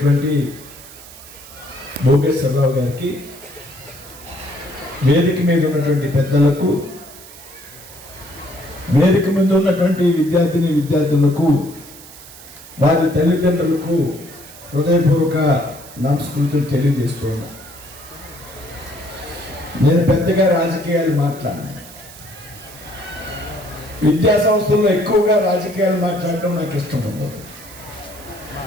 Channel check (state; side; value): noise; right; hiss, 18 dB below the sound